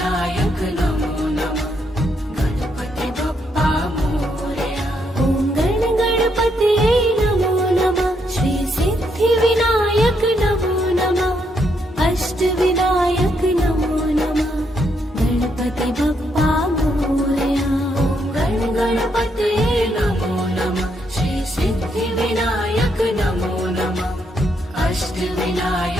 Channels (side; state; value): both; normal; correlation 0.76